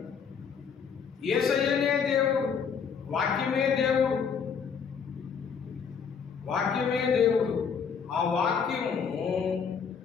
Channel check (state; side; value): quieter; right; 6.5 dB